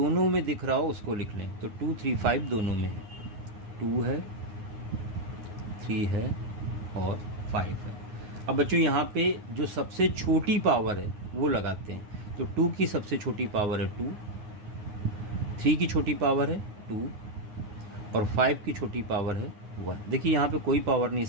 में दिख रहा हो उसको लिख लें, तो 2 3 5 दोनों में है, 2 है 3 है और 5 है। अब बच्चों यहाँ पे जो सबसे छोटी पावर है वो लगाते हैं, तो 2 की सबसे छोटी पावर है 2, 3 की छोटी पावर है 2 और 5 की छोटी पावर है 1। देखिए यहाँ पे कोई पावर नहीं,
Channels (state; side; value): late; left; 9.6 ms